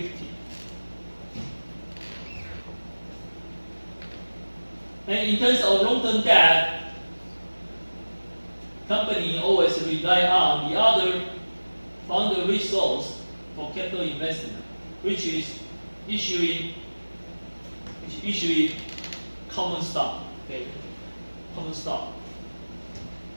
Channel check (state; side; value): inverted; both; correlation -1.00